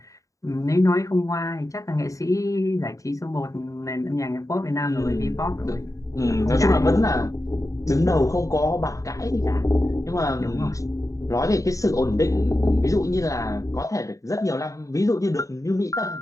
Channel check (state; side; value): late; right; 0.16 ms